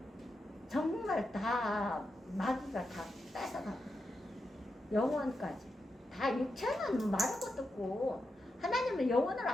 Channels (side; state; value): both; normal; correlation 0.87